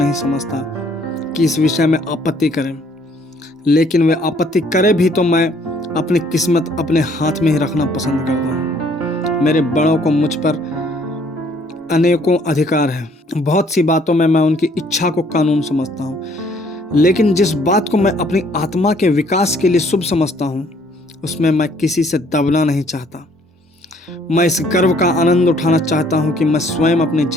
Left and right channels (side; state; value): both; normal; correlation 0.62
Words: समझता कि इस विषय में आपत्ति करें, लेकिन वे आपत्ति करे भी तो मैं अपनी किस्मत अपने हाथ में ही रखना पसंद करता हूँ। मेरे बड़ों को मुझ पर अनेकों अधिकार है। बहुत सी बातों में मैं उनकी इच्छा को कानून समझता हूँ, लेकिन जिस बात को मैं अपनी आत्मा के विकास के लिए शुभ समझता हूँ उसमें मैं किसी से दबना नहीं चाहता। मैं इस गर्व का आनंद उठाना चाहता हूँ कि मैं स्वयं अपने